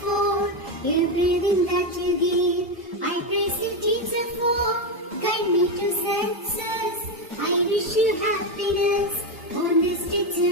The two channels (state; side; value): normal; both; correlation 0.09